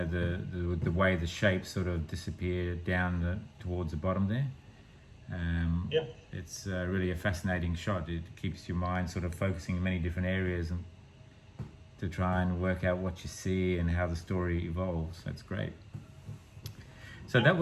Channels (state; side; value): identical; both; correlation 1.00